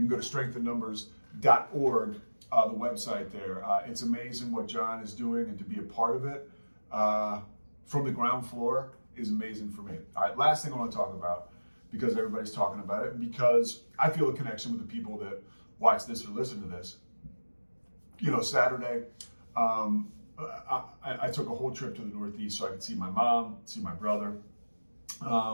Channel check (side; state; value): both; inverted; correlation -1.00